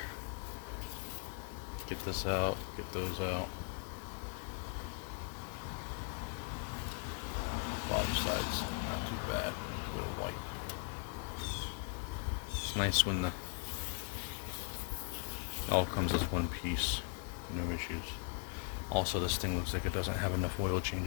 Get this out, get those out. Bottom side's not too bad. A bit of white. It's nice when it all comes as one piece. No issues. Also, this thing looks like it doesn't have enough oil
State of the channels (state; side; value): quieter; right; 36.0 dB